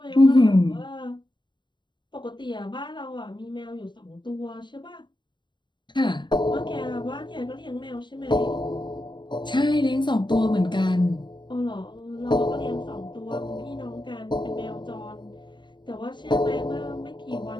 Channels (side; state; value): right; late; 0.22 ms